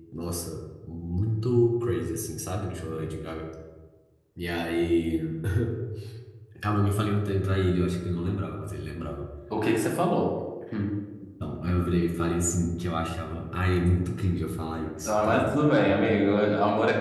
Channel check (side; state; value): both; identical; correlation 1.00